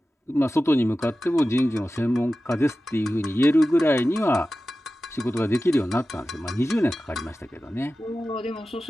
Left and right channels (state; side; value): normal; both; correlation 0.94